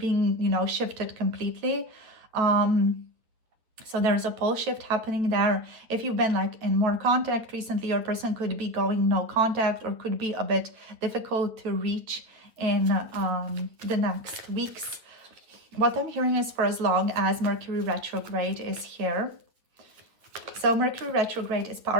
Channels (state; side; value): late; left; 8.8 ms